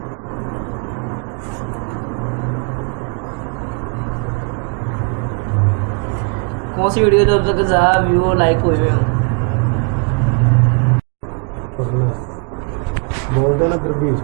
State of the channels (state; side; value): quieter; left; 36.8 dB